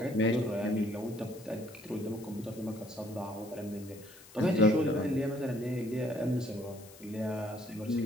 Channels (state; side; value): noise; left; hiss, 21 dB below the sound